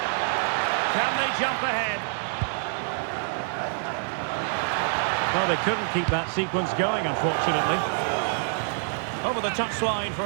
Can they jump ahead? Well, they couldn't keep that sequence going, unfortunately. Over the touchline for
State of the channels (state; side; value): silent; left; 61 dB below the other